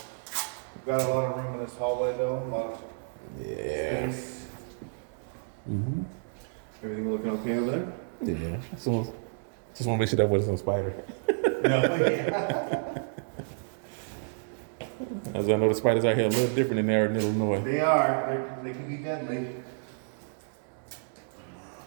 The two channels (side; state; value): left; silent; digital silence